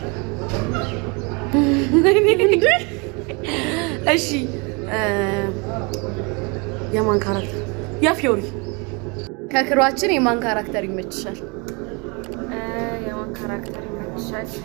እሺ የማን ካራክተር? ያ ፊዮሪ። ከክሮችን የማን ካራክተር ይመቻል? የማን ካራክተር ይመቻል?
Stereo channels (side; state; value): left; quieter; 30.7 dB